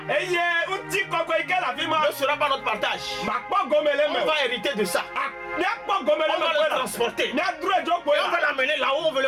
ne sera pas notre partage. On va hériter de ça. On va le transporter. Et on va l'amener là où on veut le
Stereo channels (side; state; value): both; identical; correlation 1.00